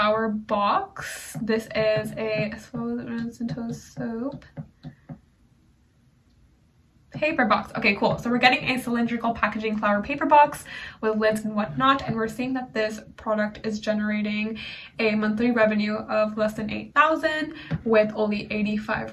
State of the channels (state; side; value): identical; both; correlation 1.00